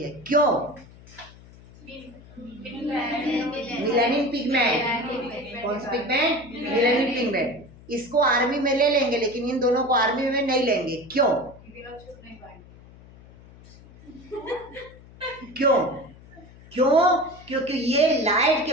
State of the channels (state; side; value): noise; left; hum, 22 dB below the sound